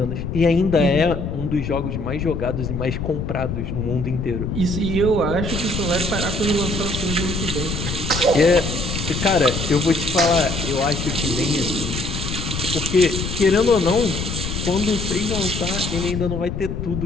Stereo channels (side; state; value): left; noise; rumble, 4 dB below the sound